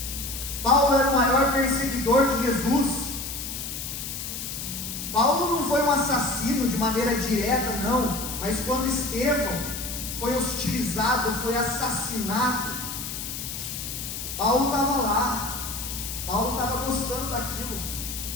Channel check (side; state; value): left; noise; hiss, 6 dB below the sound